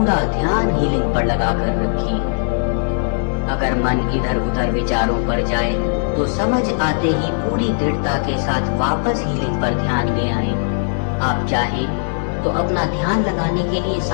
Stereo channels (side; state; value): right; silent; digital silence